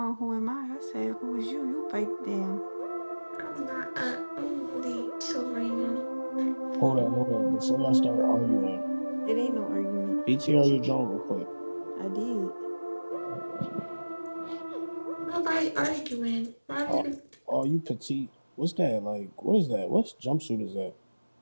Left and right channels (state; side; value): inverted; both; correlation -1.00